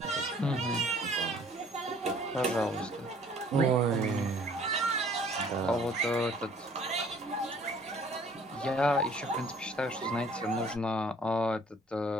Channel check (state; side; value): normal; both; correlation 0.56